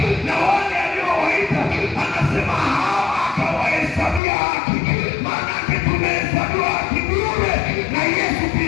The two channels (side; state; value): right; drops out; at 4.2 s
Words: na wale aliowaita anasema hawa akawahesabia haki. Maana yake tumehesabiwa haki bure na Yesu